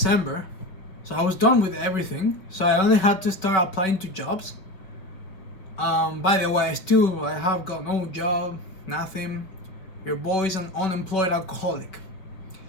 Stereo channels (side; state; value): right; late; 5.2 ms